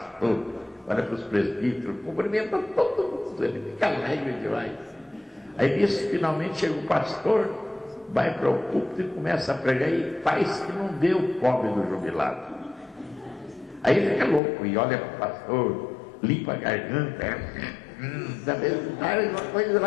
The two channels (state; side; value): drops out; right; at 14.4 s